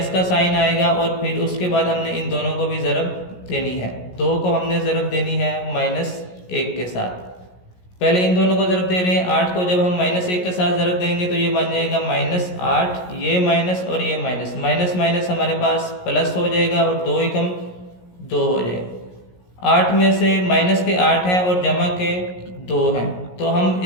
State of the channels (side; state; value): right; late; 17 ms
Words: का साइन आएगा, और फिर उसके बाद हमने इन दोनों को भी ज़रब देनी है। 2 को हमने ज़रब देनी है -1 के साथ। पहले इन दोनों को ज़रब दे रहे हैं। 8 को जब हम -1 के साथ ज़रब देंगे तो ये बन जाएगा -8, ये माइनस और ये माइनस, माइनस माइनस हमारे पास प्लस हो जाएगा, और 2 एकम 2 हो जाएगा। 8 में से माइनस के 8 हैं और जमा के 2 हैं, तो हम